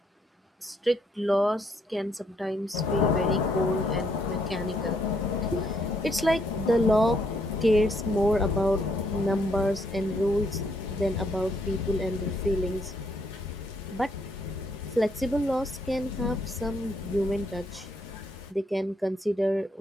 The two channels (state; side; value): normal; both; correlation 0.72